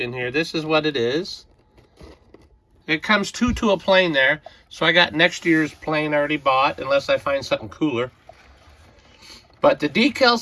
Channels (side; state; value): both; identical; correlation 1.00